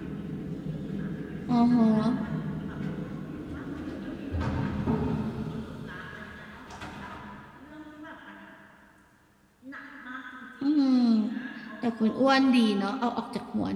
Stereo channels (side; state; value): both; identical; correlation 1.00